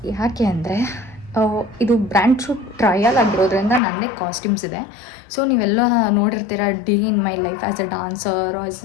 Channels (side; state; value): right; drops out; at 3.8 s